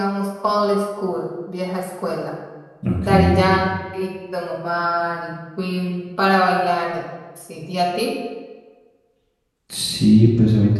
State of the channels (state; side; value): identical; both; correlation 1.00